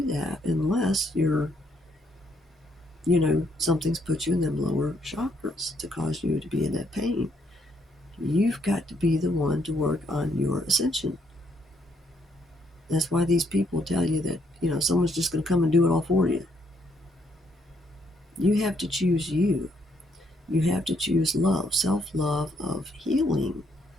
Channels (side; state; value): both; normal; correlation 0.72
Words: that unless something's put you in them lower chakras to cause you to be in that pain. You've got to be the one to work on your ascension. That's why these people tell you that, someone's just going to come and do it all for you. You have to choose you. You have to choose love, self-love of healing,